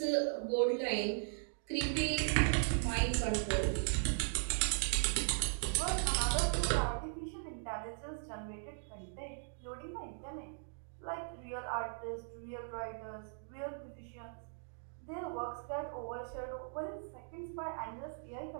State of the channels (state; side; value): silent; left; digital silence